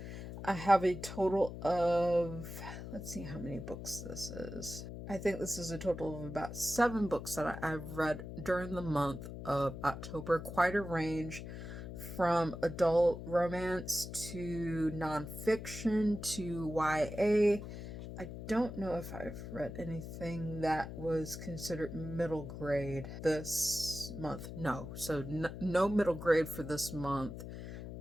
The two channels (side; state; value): left; noise; hum, 9 dB below the sound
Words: I have a total of, let's see how many books this is. I think this is a total of about 7 books that I've read during the month of October. Quite a range from adult romance to nonfiction to YA. I don't know if I've read anything that was considered middle grade this month. No, so no middle grade for this month.